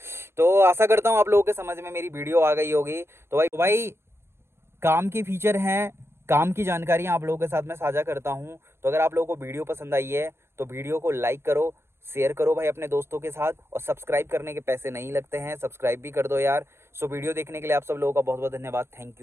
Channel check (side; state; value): left; late; 0.12 ms